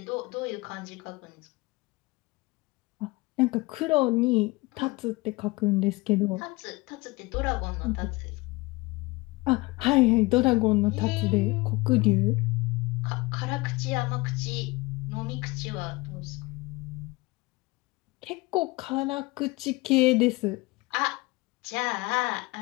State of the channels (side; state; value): right; quieter; 23.0 dB